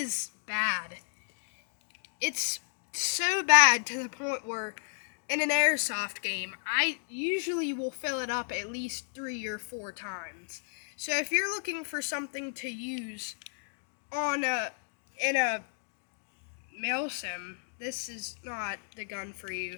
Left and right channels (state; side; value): silent; right; digital silence